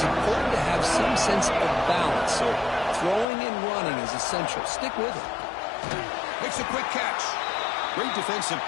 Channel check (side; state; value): right; drops out; at 3.2 s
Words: important to have some sense of balance. So throwing and running is essential. Stick with it. Makes a quick catch. Great defensive